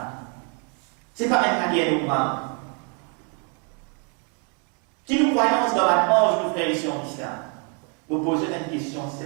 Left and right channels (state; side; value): quieter; left; 38.1 dB